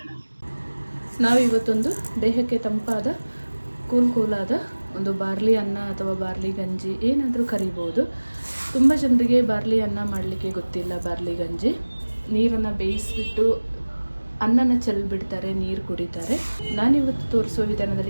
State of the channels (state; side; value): inverted; both; correlation -1.00